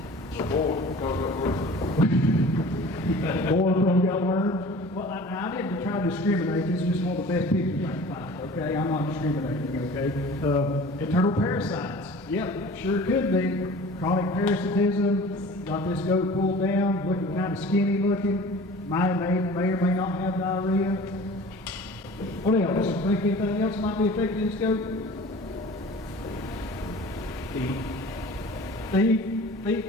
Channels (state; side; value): normal; both; correlation 0.43